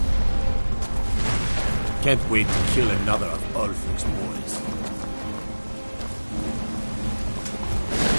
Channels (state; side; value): inverted; both; correlation -1.00